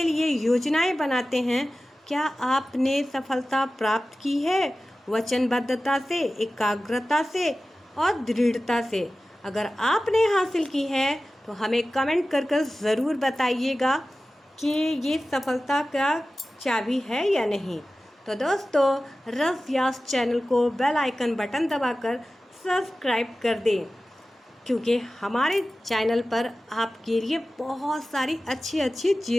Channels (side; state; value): both; normal; correlation 0.95